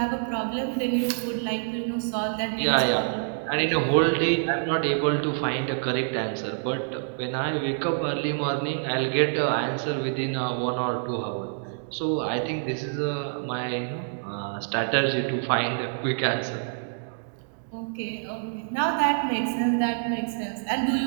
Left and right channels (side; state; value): left; silent; digital silence